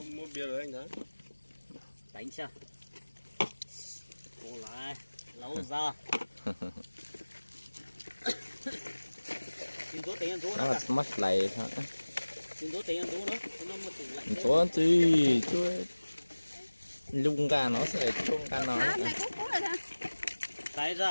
bia rồi anh Thắng. đánh chưa? Cô lại, lâu ra. Xin số tiền ăn số Nó đó là cả. mất lại hả? Xin số tiền ăn số nữa. Nó một tủ lạnh. Số gì chú lung ca nó sẽ chung ca nó. Này cũng là Cái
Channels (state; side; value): inverted; both; correlation -1.00